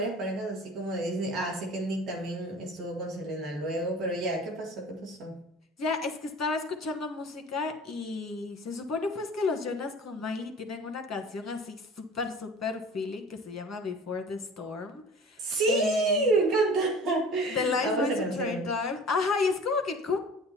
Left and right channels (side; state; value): both; normal; correlation 0.42